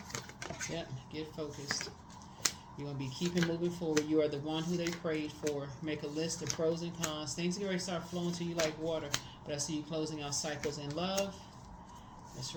Yep, get focused. You're going to be keeping moving forward. You are the one who they prayed for. Make a list of pros and cons. Things are going to start flowing to you like water. But I see you closing out cycles in love. That's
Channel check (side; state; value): both; identical; correlation 1.00